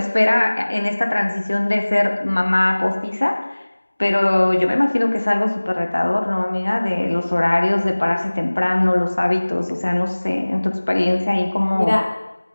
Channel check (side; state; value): both; inverted; correlation -1.00